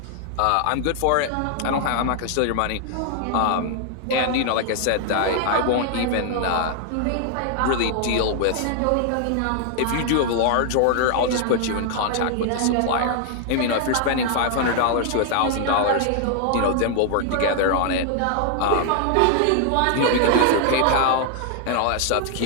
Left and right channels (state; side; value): different; both; correlation 0.00